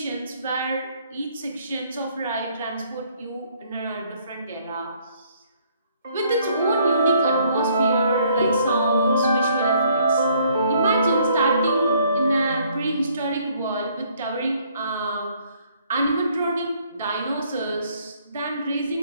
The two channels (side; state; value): both; inverted; correlation -0.65